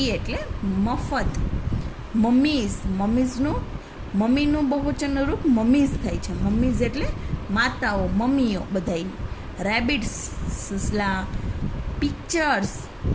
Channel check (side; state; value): both; identical; correlation 1.00